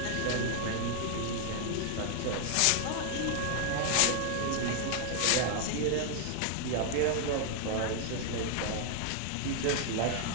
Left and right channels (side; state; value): both; different; correlation 0.00